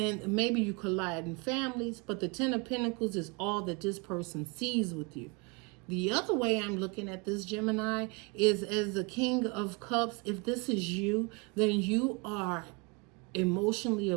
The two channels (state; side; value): quieter; left; 30.2 dB